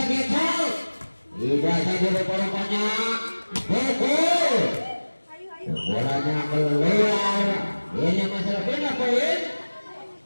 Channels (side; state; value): both; inverted; correlation -1.00